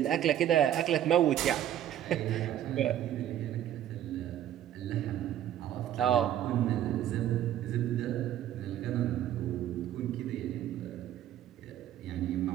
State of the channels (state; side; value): quieter; left; 11.5 dB